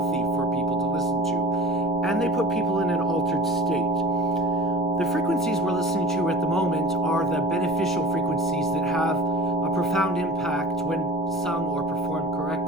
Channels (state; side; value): noise; left; rumble, 20 dB below the sound